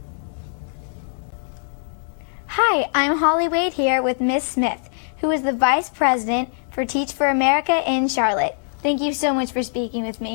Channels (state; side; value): silent; right; digital silence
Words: Hi, I'm Holly Wade here with Miss Smith, who is the Vice President for Teach for America in Charlotte. Thank you so much for speaking with